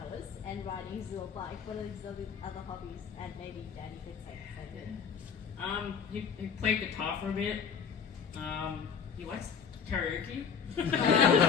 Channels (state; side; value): quieter; right; 6.8 dB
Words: and riding his little bike. What are his other hobbies? And maybe Danny could say the same. He played guitar for a bit. He likes karaoke.